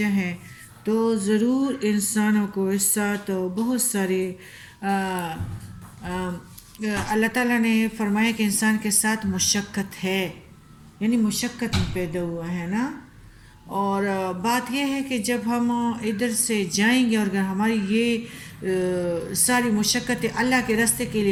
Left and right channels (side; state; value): both; identical; correlation 1.00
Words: ہے تو ضرور انسانوں کو اس ساتھ بہت سارے اللہ تعالیٰ نے فرمایا کہ انسان کے ساتھ مشقت ہے، یعنی مشقت میں پیدا ہوا ہے نا۔ اور بات یہ ہے کہ جب ہم ادھر سے جائیں گے اور اگر ہماری یہ ساری مشقتیں اللہ کے راستے کے